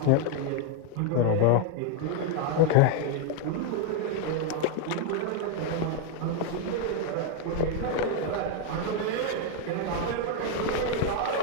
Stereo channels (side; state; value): both; different; correlation 0.01